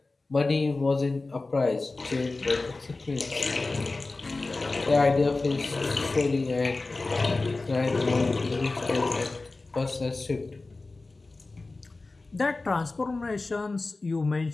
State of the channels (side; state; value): right; quieter; 3.4 dB